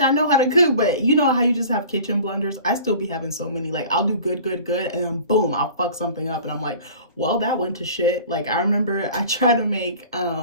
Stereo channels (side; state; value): both; inverted; correlation -0.44